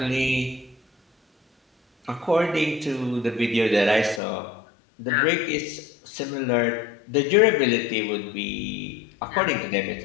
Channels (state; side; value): drops out; right; at 4.2 s